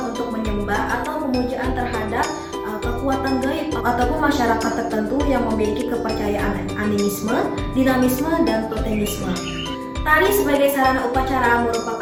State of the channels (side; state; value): both; identical; correlation 1.00